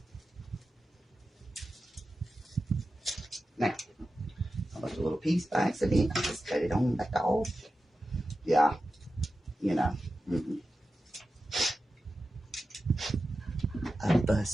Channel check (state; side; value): normal; both; correlation 0.92